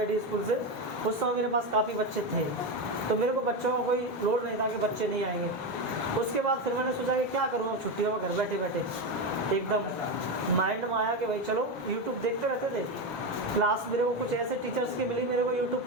स्कूल से, उस समय मेरे पास काफ़ी बच्चे थे, तो मेरे को बच्चों का कोई लोड नहीं था कि बच्चे नहीं आएंगे। उसके बाद फिर मैंने सोचा कि क्या करूँ अब छुट्टियों में घर बैठे बैठे। एकदम माइंड में आया कि भाई चलो यूट्यूब देखते रहते थे। क्लास मेरे को कुछ ऐसे टीचर्स की मिली मेरे को यूट्यूब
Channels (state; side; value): normal; both; correlation 0.14